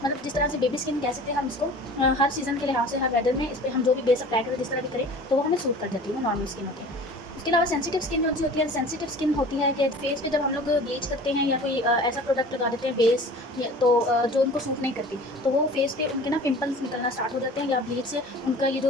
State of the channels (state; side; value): normal; both; correlation 0.42